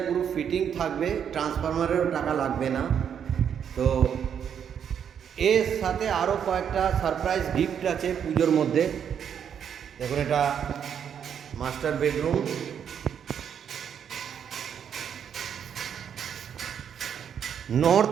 পুরো ফিটিং থাকবে, ট্রান্সফরমারেরও টাকা লাগবে না। তো এর সাথে আরও কয়েকটা সারপ্রাইজ গিফট আছে পুজোর মধ্যে। দেখুন, এটা master bedroom,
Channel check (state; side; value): quieter; left; 8.2 dB